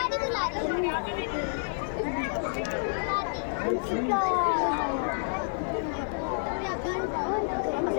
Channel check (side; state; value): right; silent; 58 dB below the other